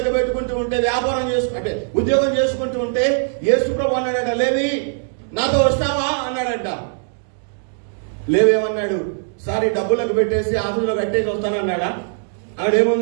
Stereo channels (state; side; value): silent; left; 66 dB below the other